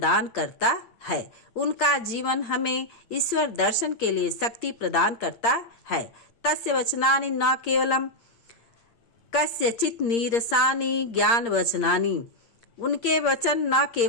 करता है। उनका जीवन हमें ईश्वर दर्शन के लिए शक्ति प्रदान करता है। तस्य वचनानि न केवलम कस्यचित् नीरसानि ज्ञान वचनानि। उनके वचन न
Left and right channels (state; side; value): late; right; 8.7 ms